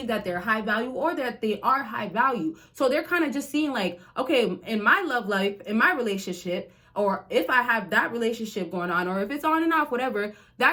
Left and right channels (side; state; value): both; identical; correlation 1.00